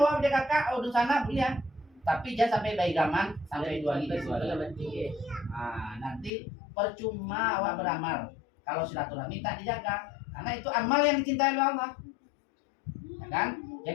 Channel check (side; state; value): right; drops out; at 6.3 s